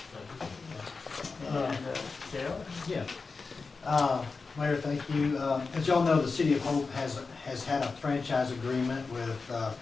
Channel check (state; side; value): quieter; right; 4.4 dB